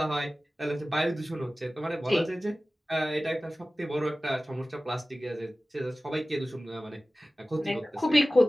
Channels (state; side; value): normal; both; correlation 0.96